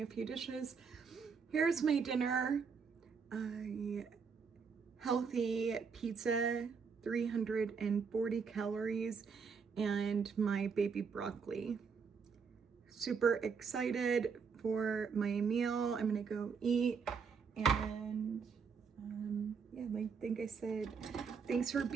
a few dishes. Here's my dinner. Healthy pizza, 340 calories, and my baby broccoli. Super excited for my meal. I'm gonna go eat, and yeah, I think I said thanks for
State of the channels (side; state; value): left; quieter; 5.7 dB